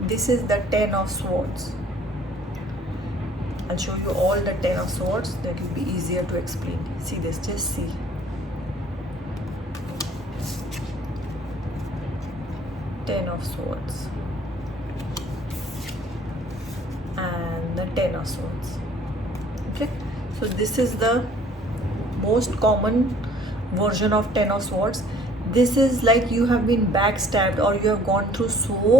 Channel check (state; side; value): normal; both; correlation 0.56